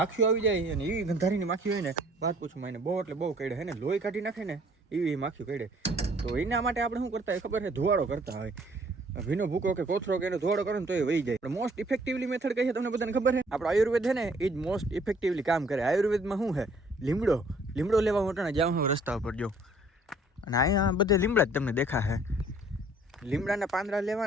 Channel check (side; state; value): both; normal; correlation 0.58